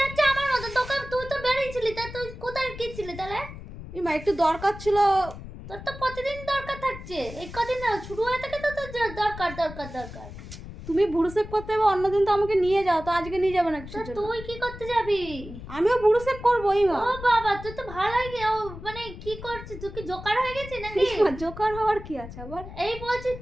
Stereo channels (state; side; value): noise; left; rumble, 12 dB below the sound